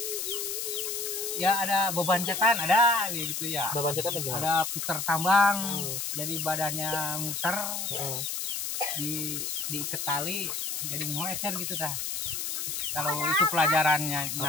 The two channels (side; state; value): left; noise; hiss, 3 dB below the sound